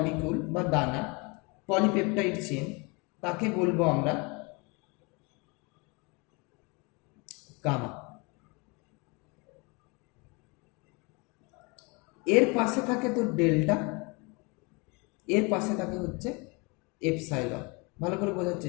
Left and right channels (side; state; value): right; quieter; 29.1 dB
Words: বা দানা, পলিপেপটাইড চেন, তাকে বলবো আমরা গামা। এর পাশে থাকে তো ডেল্টা, এর পাশে থাকে হচ্ছে এপসাইলন। ভালো করে বোঝার